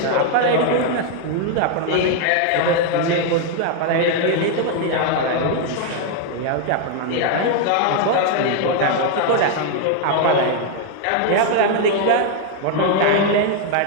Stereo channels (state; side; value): different; both; correlation 0.00